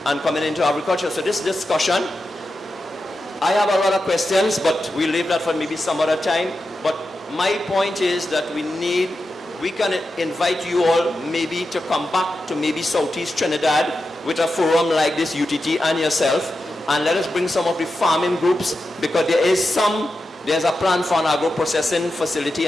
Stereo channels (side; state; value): both; normal; correlation 0.90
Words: and coming into agriculture. So this discussion, I have a lot of questions, but we'll leave that for maybe some other time. But my point is that we can invite you all maybe to come back to maybe Southeast Trinidad with a forum like this, UTT and yourself, and let us bring some of the farming groups, because there's a plan for an agro-processing facility